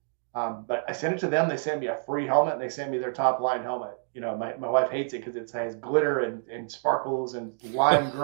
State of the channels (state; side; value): silent; left; digital silence